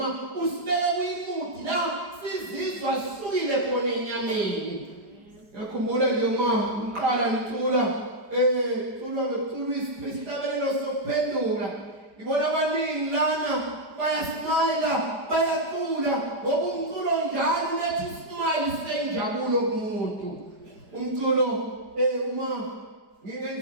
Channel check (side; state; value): left; late; 4.9 ms